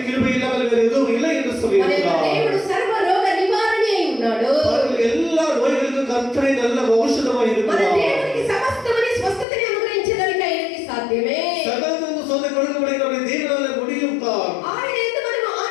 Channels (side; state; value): right; drops out; at 9.5 s